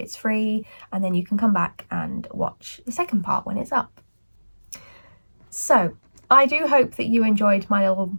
free, and then you can come back and watch the second part when it's up. So I do hope that you enjoyed my little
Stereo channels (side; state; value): both; inverted; correlation -1.00